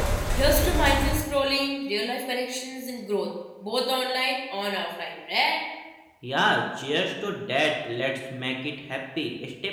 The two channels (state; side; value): identical; both; correlation 1.00